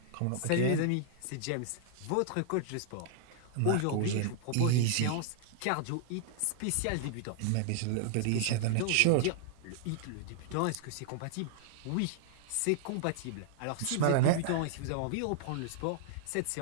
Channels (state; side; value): different; both; correlation -0.01